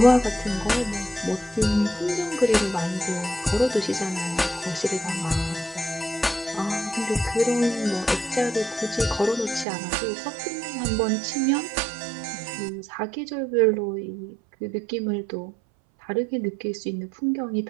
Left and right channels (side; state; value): left; drops out; at 9.7 s